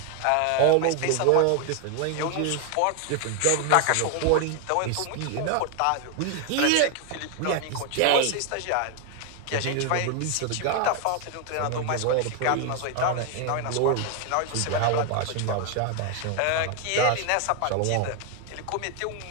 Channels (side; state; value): both; different; correlation 0.01